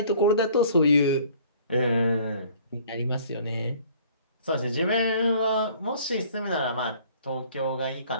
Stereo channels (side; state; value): both; inverted; correlation -0.54